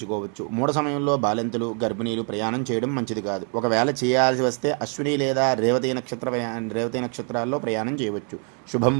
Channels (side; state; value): left; quieter; 40.0 dB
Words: మూఢ సమయంలో బాలింతలు, గర్భిణీలు ప్రయాణం చేయడం మంచిది కాదు. ఒకవేళ చేయాల్సి వస్తే అశ్విని లేదా రేవతి నక్షత్రాల్లో ప్రయాణం చేయవచ్చు. శుభం